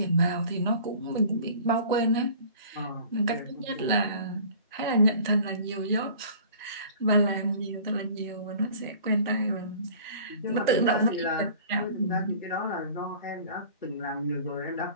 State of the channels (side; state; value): both; inverted; correlation -0.46